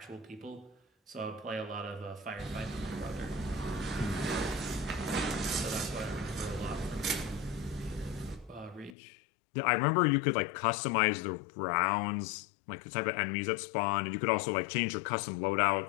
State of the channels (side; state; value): right; drops out; at 9.0 s